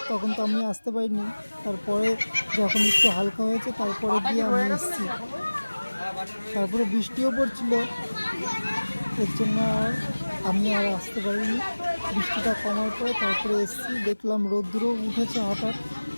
তখন তো আমি আসতে পারিনি। তারপরে যখন একটু হালকা হয়েছে তারপরে গিয়ে আমি এসেছি। তারপরে বৃষ্টিও পড়ছিল, এর জন্য আমি আর আসতে পারিনি। বৃষ্টিটা কমার পরে তারপরে এসেছি, দেখলাম রোদ্দুরও উঠেছে হঠাৎ।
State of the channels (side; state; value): both; inverted; correlation -1.00